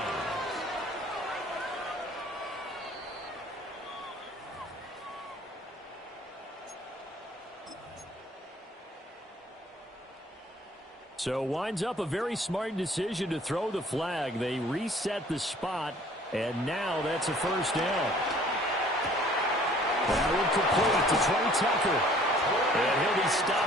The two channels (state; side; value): normal; both; correlation 0.54